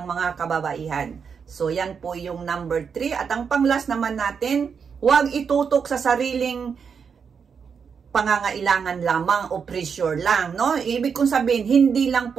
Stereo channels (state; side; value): quieter; left; 6.4 dB